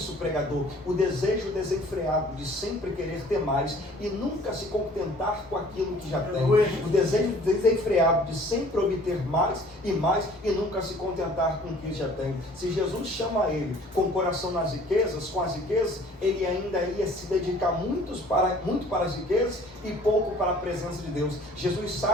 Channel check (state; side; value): normal; both; correlation 0.52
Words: pregador? O desejo desenfreado de sempre querer ter mais e nunca se contentar com aquilo que já tem. O desejo desenfreado de sempre obter mais e nunca se contentar com o que já tem. Se Jesus chama ele com o coração nas riquezas, com as riquezas, ele ainda ia se dedicar muito para as riquezas e pouco para a presença de Deus. Jesus